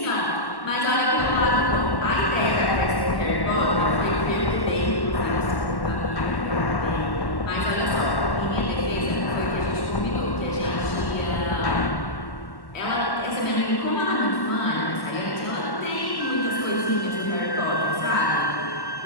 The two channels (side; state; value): right; late; 1.1 ms